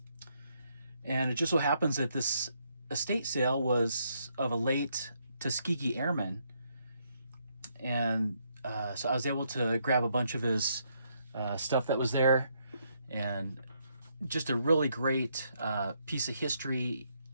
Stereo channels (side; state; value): both; inverted; correlation -0.75